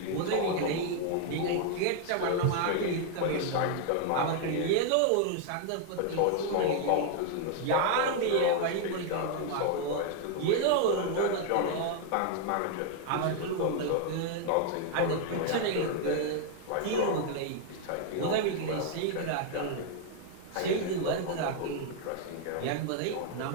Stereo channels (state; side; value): different; both; correlation 0.00